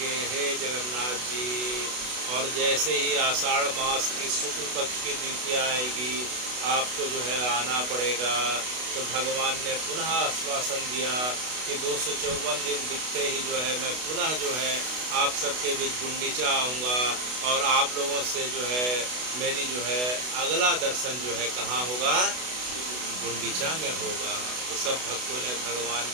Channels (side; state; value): left; late; 32 ms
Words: हे जगन्नाथ जी। और जैसे ही आषाढ़ मास की शुक्ल पक्ष की द्वितीया आएगी, आपको जो है आना पड़ेगा। तो भगवान ने पुनः आश्वासन दिया कि 254 दिन बीतते ही जो है मैं पुनः जो है आप सबके बीच गुंडीचा आऊँगा और आप लोगों से जो है मेरी जो है अगला दर्शन जो है कहाँ होगा? गुंडीचा में होगा। तो सब भक्तों ने भगवान